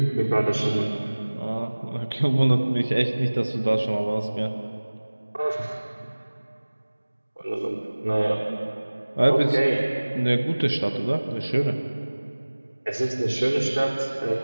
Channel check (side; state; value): both; inverted; correlation -1.00